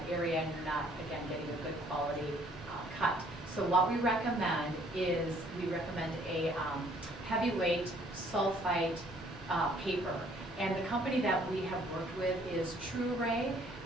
area, and you're not, again, getting a good quality cut. So what we recommend is a heavyweight sulfite paper. And the company that we have worked with is TrueRay,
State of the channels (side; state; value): both; normal; correlation 0.61